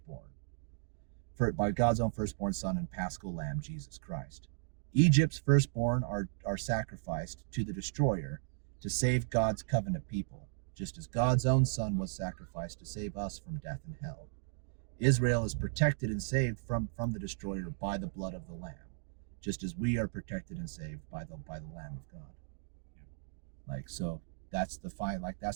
son and paschal lamb, Jesus Christ. Egypt's firstborn are sacrificed to the destroyer to save God's covenant people, just as God's own son was sacrificed to save us from death and hell. Israel is protected and saved from the destroyer by the blood of the Lamb, just as we are protected and saved by the Lamb of God. Like, so that's the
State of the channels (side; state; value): left; silent; digital silence